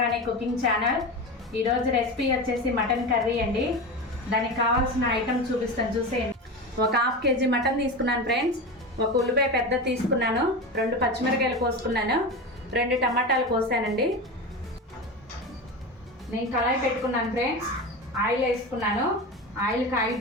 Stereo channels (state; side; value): normal; both; correlation 0.24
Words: cooking channel. ఈరోజు recipe వచ్చేసి mutton curry అండి. దానికి కావాల్సిన ఐటమ్ చూపిస్తాను, చూసేయండి. ఒక హాఫ్ కేజీ మటన్ తీసుకున్నాను ఫ్రెండ్స్. ఒక ఉల్లిపాయ పెద్ద తీసుకున్నాను, 2 పచ్చిమిరకాయలు కోసుకున్నాను, 2 టమాటాలు కోసానండి. నేను కళాయి పెట్టుకున్నాను ఫ్రెండ్స్. ఆయిల్ వేసుకున్నాను. ఆయిల్